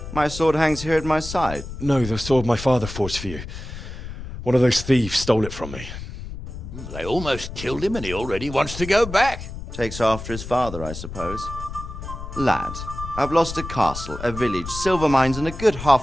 My sword hangs here at my side. No, the sword my father forged for you. One of those thieves stole it from me. They almost killed him and he already wants to go back. Takes after his father, I suppose. Lad, I've lost a castle, a village, silver mines, and a good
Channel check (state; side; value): noise; left; rumble, 10 dB below the sound